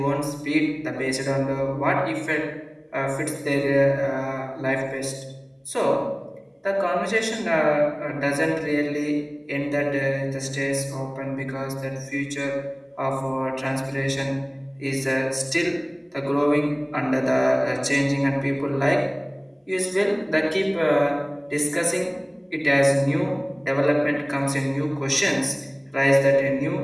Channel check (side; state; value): both; identical; correlation 1.00